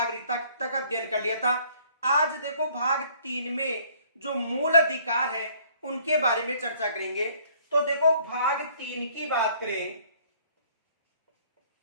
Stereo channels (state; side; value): inverted; both; correlation -0.59